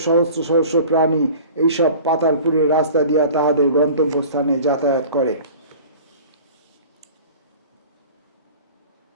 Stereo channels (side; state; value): both; inverted; correlation -0.42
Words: সহস্র সহস্র প্রাণী এইসব পাতালপুরের রাস্তা দিয়া তাহাদের গন্তব্যস্থানে যাতায়াত করে।